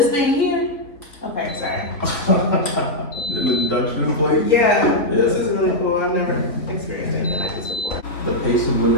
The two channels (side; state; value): right; late; 3.4 ms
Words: thing here. Okay, sorry. An induction plate? Yeah, this is really cool. I've never experienced anything like this before. The pace of